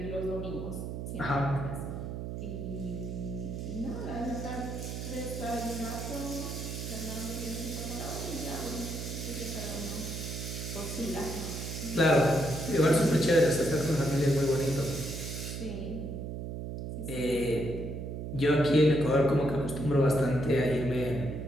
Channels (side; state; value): right; noise; hum, 6 dB below the sound